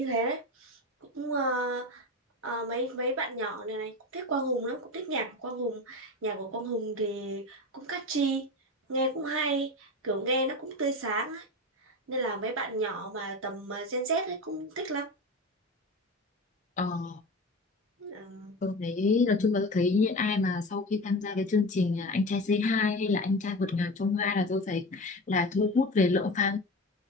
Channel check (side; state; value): both; normal; correlation 0.27